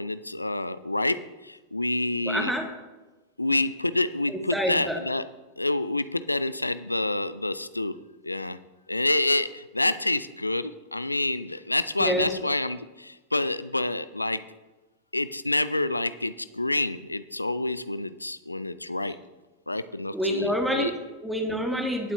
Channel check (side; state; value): both; inverted; correlation -0.67